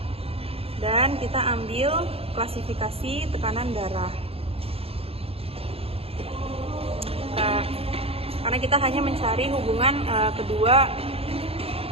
Dan kita ambil klasifikasi tekanan darah. Karena kita hanya mencari hubungan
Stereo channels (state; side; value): late; left; 0.28 ms